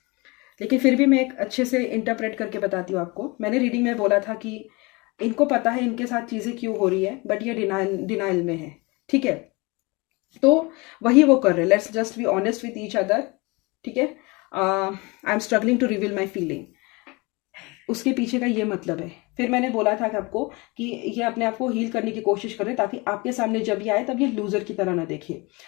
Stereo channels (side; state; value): right; quieter; 26.0 dB